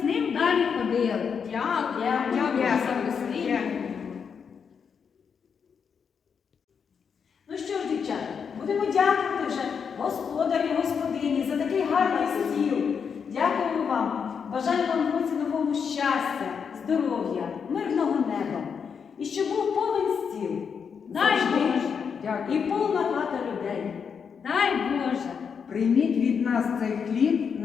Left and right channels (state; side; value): quieter; right; 6.5 dB